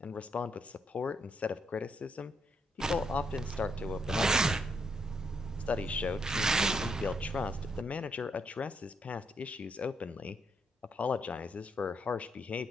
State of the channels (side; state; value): both; normal; correlation 0.76